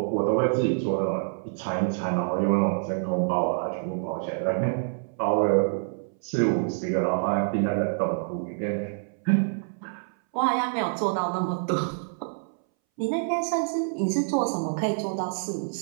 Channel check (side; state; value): left; silent; 60 dB below the other